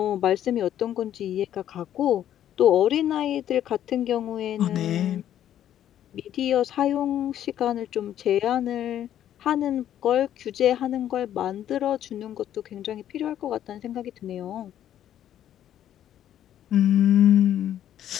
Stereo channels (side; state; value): right; quieter; 11.1 dB